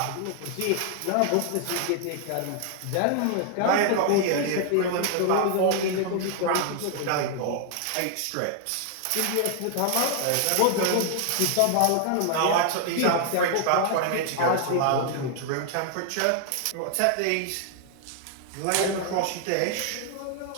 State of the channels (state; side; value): different; both; correlation 0.00